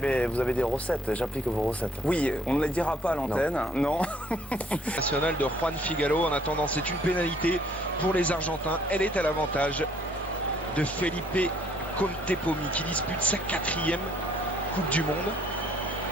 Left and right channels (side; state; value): left; noise; hum, 24 dB below the sound